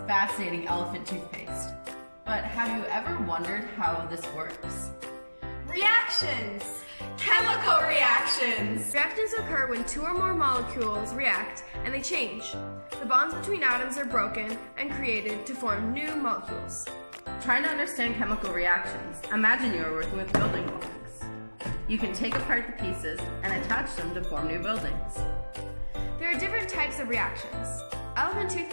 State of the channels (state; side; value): inverted; both; correlation -1.00